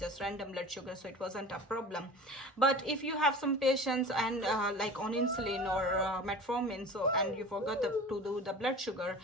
random blood sugar. So it wasn't a problem. But if you have some patients and like on insulin or metformin, so and you forgot to do the blood sugar,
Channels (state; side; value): normal; both; correlation 0.37